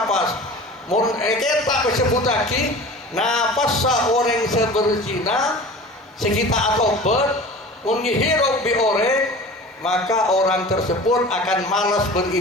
mun kita disebut lagi nafas orang seberzina sekitar atobat mun hirup bi orang maka orang tersebut akan malas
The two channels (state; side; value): normal; both; correlation 0.38